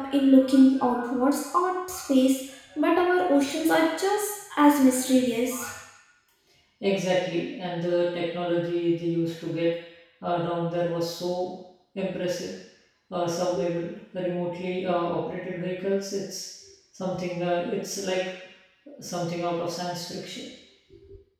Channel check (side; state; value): both; identical; correlation 1.00